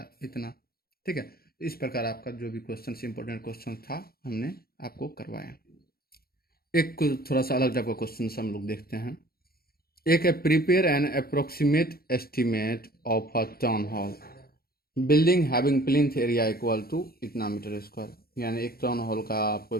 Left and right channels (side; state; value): right; late; 0.44 ms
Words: इतना, ठीक है। इस प्रकार आपका जो भी क्वेश्चन इंपॉर्टेंट क्वेश्चन था हमने आपको करवाया। एक थोड़ा सा अलग टाइप का क्वेश्चन हम लोग देखते हैं। एक है prepare an approximate estimate of a town hall building having plinth area equal to इतना मीटर स्क्वायर, यानी एक टाउन हॉल का आपको